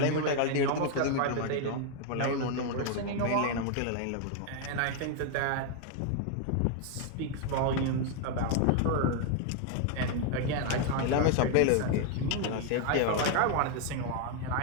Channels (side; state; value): both; different; correlation 0.00